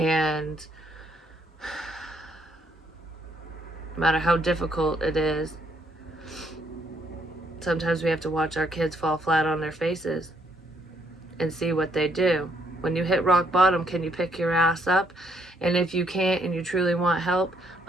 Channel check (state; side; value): normal; both; correlation 0.71